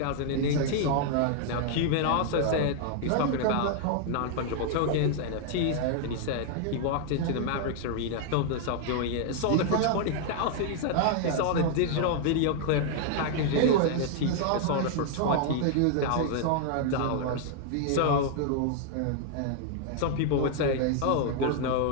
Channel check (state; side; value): different; both; correlation 0.00